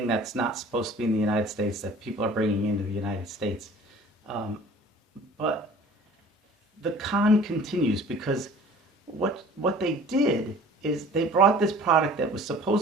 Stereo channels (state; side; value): normal; both; correlation 0.48